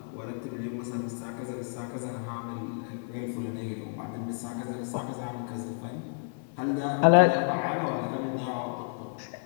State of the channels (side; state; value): right; silent; 57 dB below the other